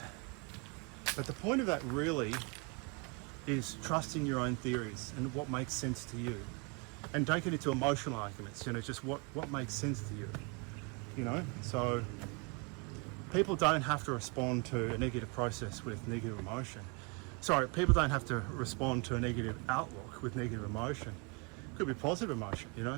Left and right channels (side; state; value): left; quieter; 30.4 dB